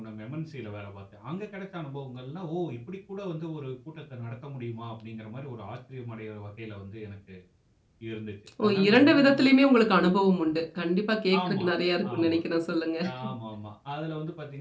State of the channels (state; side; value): identical; both; correlation 1.00